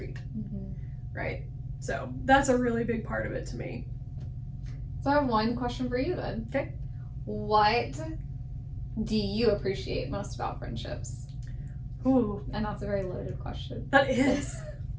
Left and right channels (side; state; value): both; identical; correlation 1.00